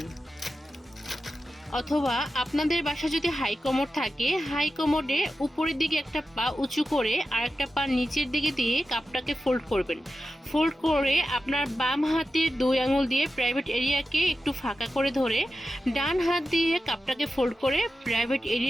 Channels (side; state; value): both; normal; correlation 0.92